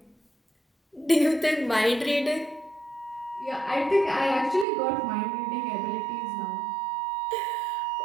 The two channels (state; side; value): drops out; left; at 4.7 s